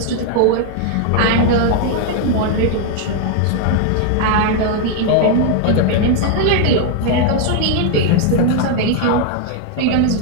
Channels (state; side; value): different; both; correlation 0.00